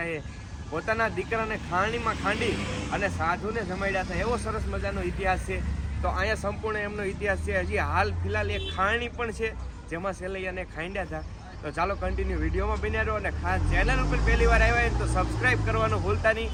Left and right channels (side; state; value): both; identical; correlation 1.00